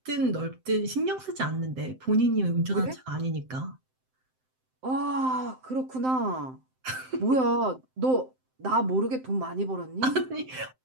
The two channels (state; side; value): late; left; 7.7 ms